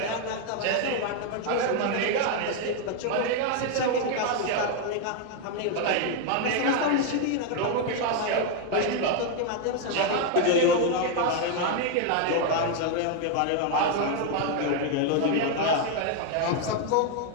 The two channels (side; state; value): both; different; correlation 0.01